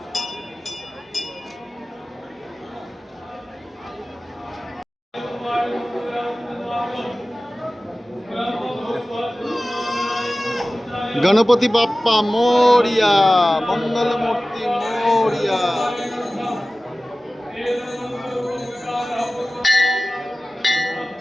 गणपति बाप्पा मोरिया, मंगल मूर्ति मोरिया।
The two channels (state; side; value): normal; both; correlation 0.97